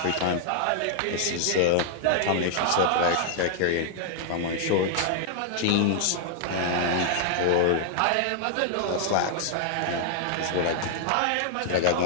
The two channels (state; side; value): different; both; correlation -0.01